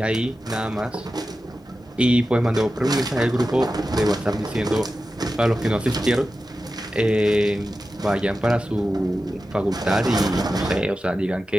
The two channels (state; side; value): normal; both; correlation 0.93